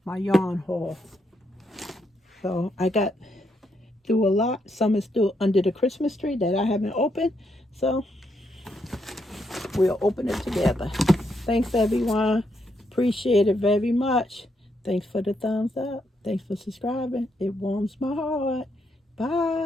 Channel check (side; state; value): both; normal; correlation 0.78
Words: my yarn haul. So I got through a lot. Some is still under the Christmas tree that I haven't opened. So we'll open it together. Thanks everyone. Appreciate it very much. Thanks for the thumbs up. Thanks for subscribing. It warms my heart.